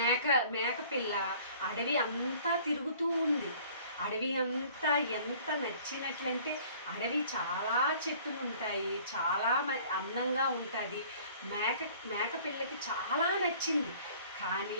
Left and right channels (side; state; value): both; inverted; correlation -0.52